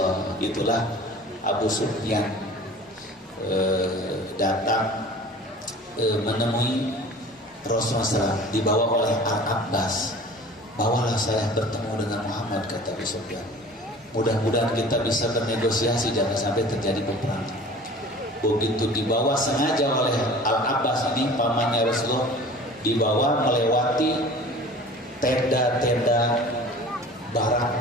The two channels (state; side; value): normal; both; correlation 0.43